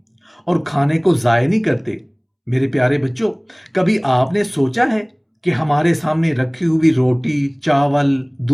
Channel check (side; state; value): both; identical; correlation 1.00